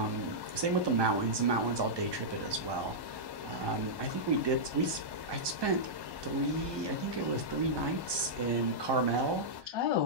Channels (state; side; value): late; left; 1.2 ms